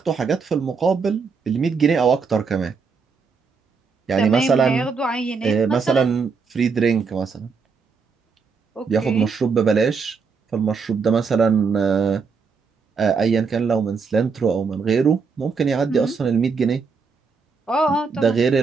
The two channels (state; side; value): quieter; left; 5.2 dB